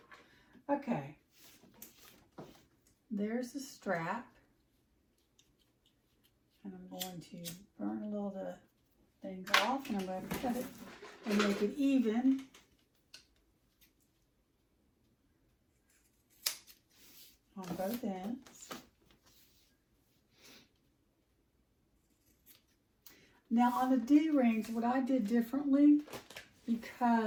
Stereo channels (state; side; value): identical; both; correlation 1.00